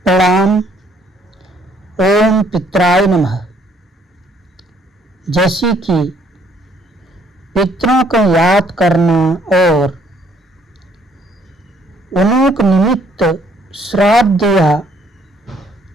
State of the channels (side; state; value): both; normal; correlation 0.65